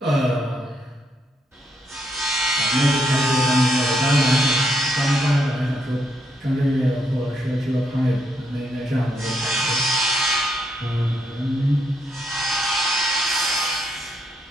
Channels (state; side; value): normal; both; correlation 0.77